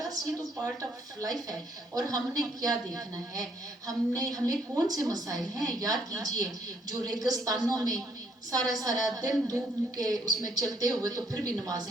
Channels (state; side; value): normal; both; correlation 0.69